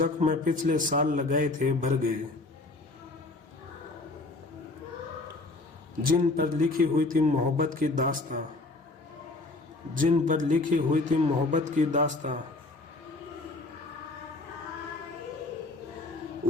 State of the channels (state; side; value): quieter; right; 3.1 dB